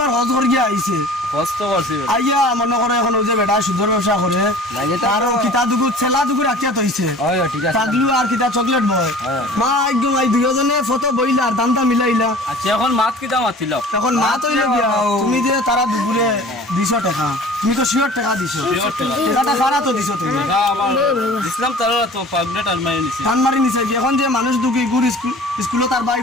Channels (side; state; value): both; normal; correlation 0.44